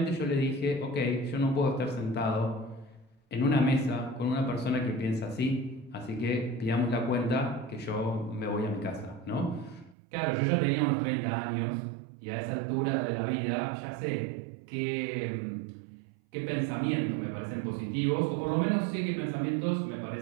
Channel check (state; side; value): drops out; left; at 10.0 s